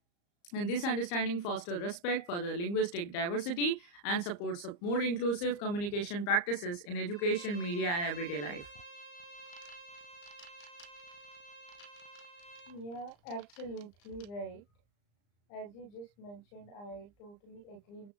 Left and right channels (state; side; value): late; right; 34 ms